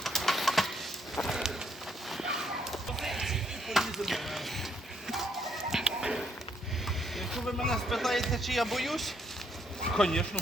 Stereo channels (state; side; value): normal; both; correlation 0.72